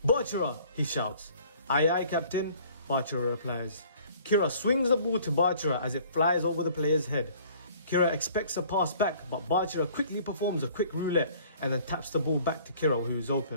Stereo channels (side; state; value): both; inverted; correlation -0.54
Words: "Bachira!" he shouts. "Aye aye, captain," Bachira replies. Kira swings the ball to Bachira as it flies over the player's head. Kira expects a pass back, but Bachira quickly performs a quick roulette and then taps the ball back to Kira, who is